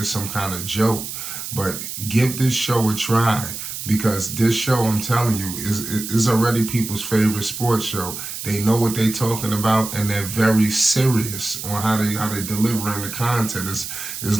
some kind of joke. But give this show a try, because this show, I'm telling you, is already people's favorite sports show. They know what they're talking about, and they're very serious on how they delivering the content.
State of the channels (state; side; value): noise; right; hiss, 7 dB below the sound